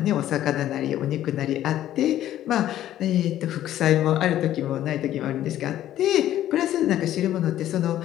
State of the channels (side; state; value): right; quieter; 12.6 dB